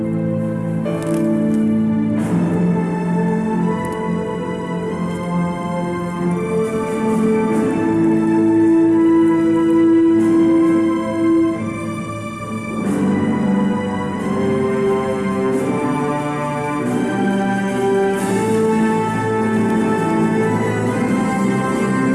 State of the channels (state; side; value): noise; left; rumble, 28 dB below the sound